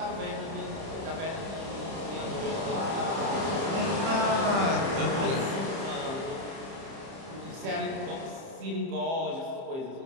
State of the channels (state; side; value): late; left; 30 ms